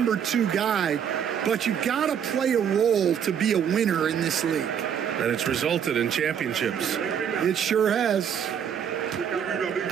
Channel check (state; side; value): quieter; left; 8.2 dB